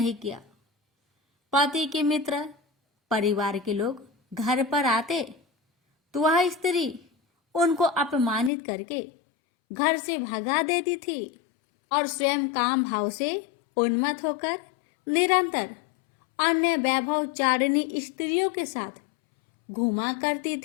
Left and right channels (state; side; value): drops out; right; at 8.5 s